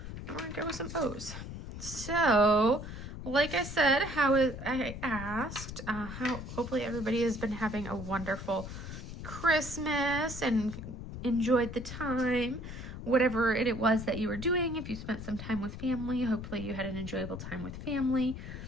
We're going to go with some O's. So, like I said, I asked, hopefully everybody has been having a wonderful Christmas and enjoyed the time. Whatever it was that you were doing, if you spent some time with family, hopefully you had an enjoyable time with family.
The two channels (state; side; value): noise; left; rumble, 9 dB below the sound